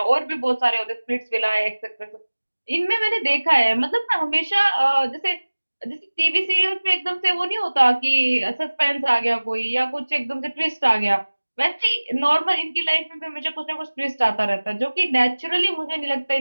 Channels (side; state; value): both; inverted; correlation -1.00